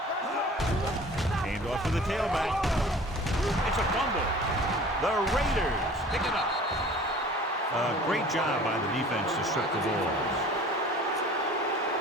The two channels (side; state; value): both; normal; correlation 0.45